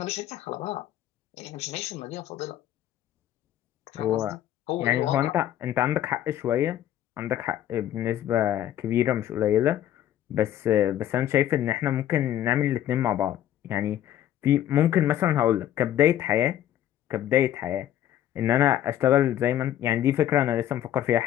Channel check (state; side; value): quieter; right; 11.8 dB